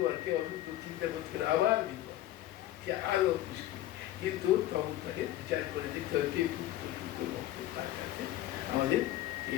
আর কে অশুদ্ধ চিন্তা করতে গেলে আবার বিপদ, সে আরো মুশকিল। কিন্তু তখন তাকে বিচার করে দেখতে হবে কে শুদ্ধ শুদ্ধ ভক্ত, তার কাছে আমাদের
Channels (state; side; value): quieter; right; 14.2 dB